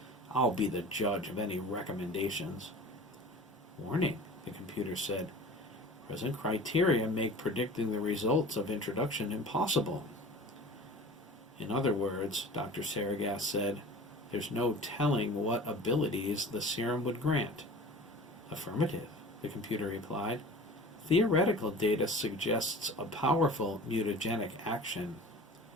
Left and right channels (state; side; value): normal; both; correlation 0.39